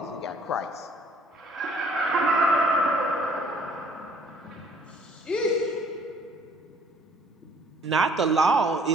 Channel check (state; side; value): normal; both; correlation 0.58